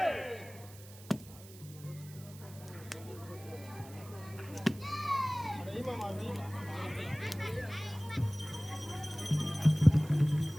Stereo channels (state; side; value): noise; right; hiss, 19 dB below the sound